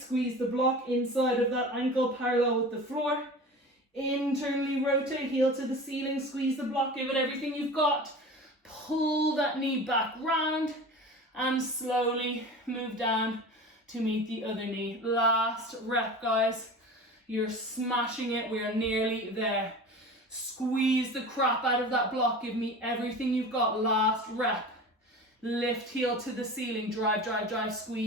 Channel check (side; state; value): both; normal; correlation 0.35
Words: squeeze the block inside of that ankle parallel with the floor. Internally rotate, heel to the ceiling, squeeze the block, give it everything you've got. Pull that knee back round and slowly move down to meet the other knee. Last rep, guys. You're smashing it. We are nearly there. Squeeze the crap out of that block. Give me everything you've got. Last rep. Lift heel to the ceiling, drive, drive, drive,